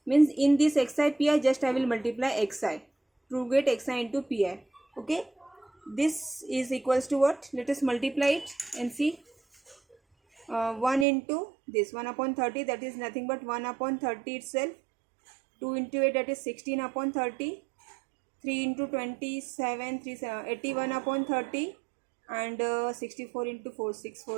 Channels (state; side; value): drops out; left; at 11.1 s